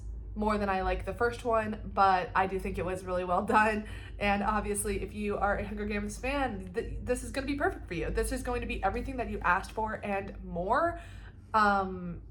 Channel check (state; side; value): identical; both; correlation 1.00